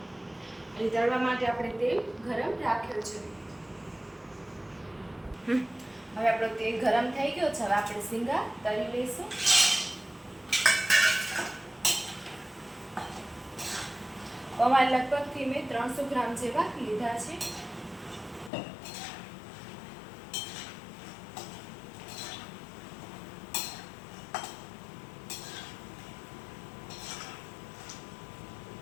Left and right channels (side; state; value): right; drops out; at 18.5 s